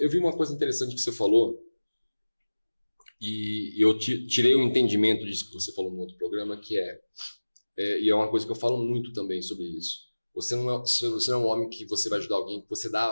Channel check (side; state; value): both; inverted; correlation -1.00